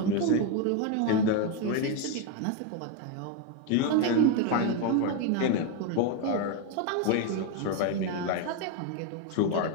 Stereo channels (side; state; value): both; different; correlation 0.02